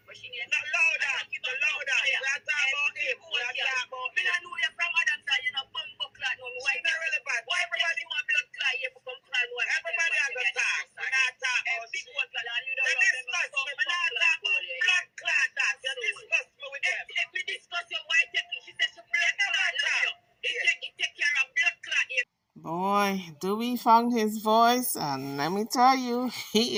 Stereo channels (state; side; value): identical; both; correlation 1.00